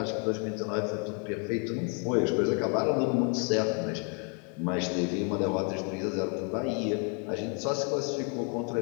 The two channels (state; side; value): quieter; right; 37.4 dB